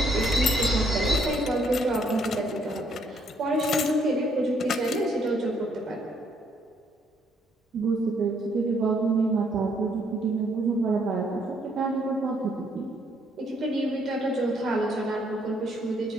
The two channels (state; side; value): normal; both; correlation 0.69